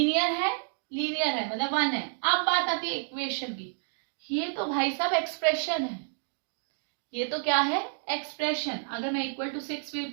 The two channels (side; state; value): left; silent; digital silence